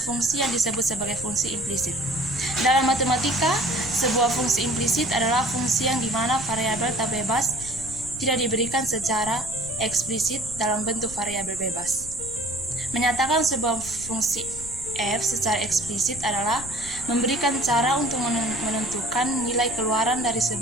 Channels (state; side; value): noise; left; rumble, 16 dB below the sound